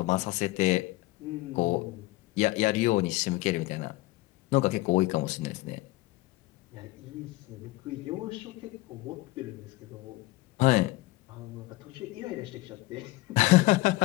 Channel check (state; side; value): quieter; right; 19.4 dB